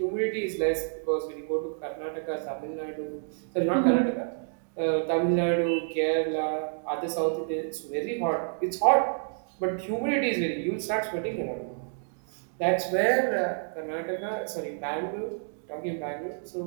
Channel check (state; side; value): silent; left; digital silence